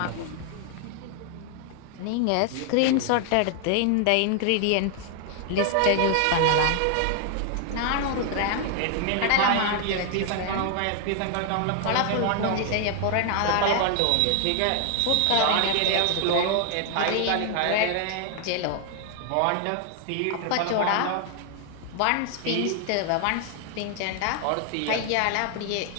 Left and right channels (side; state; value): both; different; correlation 0.00